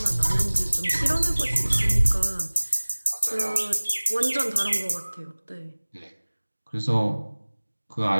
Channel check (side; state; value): both; inverted; correlation -1.00